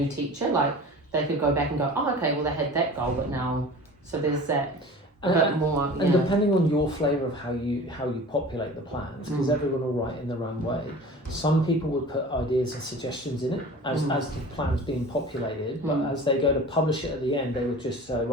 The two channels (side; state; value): both; normal; correlation 0.39